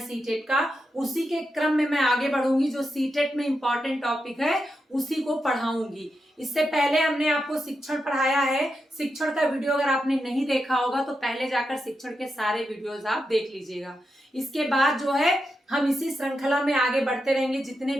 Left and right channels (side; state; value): both; normal; correlation 0.87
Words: का, उसी के क्रम में मैं आगे बढ़ूंगी। जो सीटेट में इंपॉर्टेंट टॉपिक है उसी को पढ़ाऊंगी। इससे पहले हमने आपको शिक्षण पढ़ाया है। शिक्षण का वीडियो अगर आपने नहीं देखा होगा तो पहले जाकर शिक्षण के सारे वीडियोस आप देख लीजिएगा। इसके बाद जो है हम इसी श्रृंखला में आगे बढ़ते रहेंगे। जितने